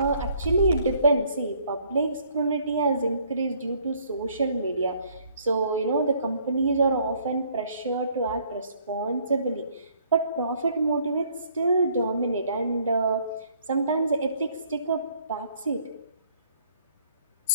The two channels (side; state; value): both; inverted; correlation -0.63